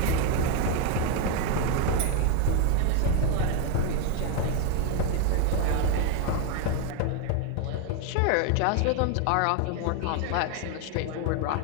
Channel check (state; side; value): different; both; correlation 0.01